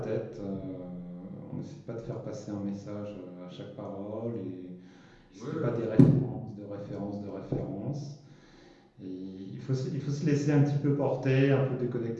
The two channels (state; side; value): identical; both; correlation 1.00